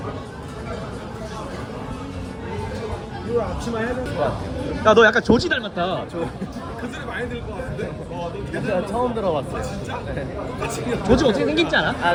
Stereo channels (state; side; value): identical; both; correlation 1.00